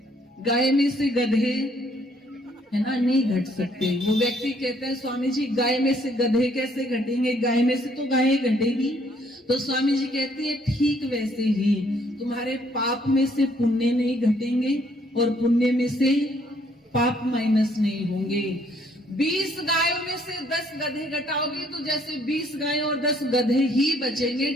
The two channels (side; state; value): both; normal; correlation 0.66